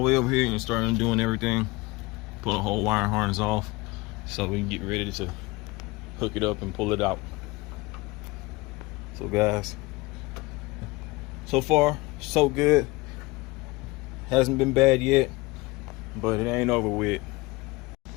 way over here and start undoing everything. Pull the whole wiring harness off so we can get ready to hook it up and pull it out. So guys, so far so good. Hasn't been bad yet, but it ain't over with.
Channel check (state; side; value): quieter; right; 22.5 dB